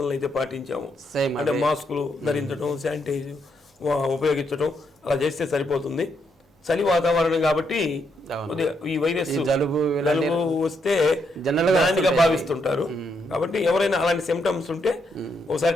అయితే పాటించామో అంటే మాస్కులు ధరించడం, శానిటైజ్ ఉపయోగించడం అలా చేస్తే సరిపోతుంది. చలి వాతావరణం కాబట్టి ఈ వైరస్ జలుబు వస్తే దానిగా భావిస్తుంటారు. కాబట్టి ఎవరైనా అలాంటి సిమ్టమ్స్ ఉంటే ఒకసారి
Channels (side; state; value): both; normal; correlation 0.77